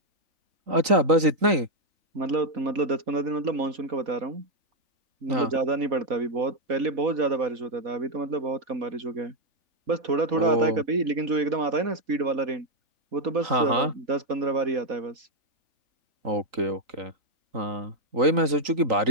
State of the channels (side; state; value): left; late; 3.9 ms